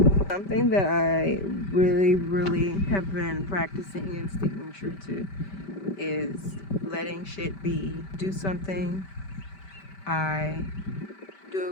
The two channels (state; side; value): late; right; 5.1 ms